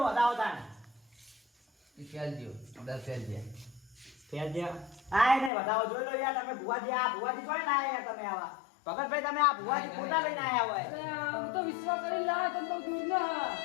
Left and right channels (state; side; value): drops out; right; at 5.5 s